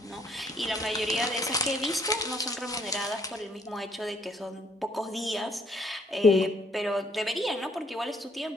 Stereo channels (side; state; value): both; normal; correlation 0.65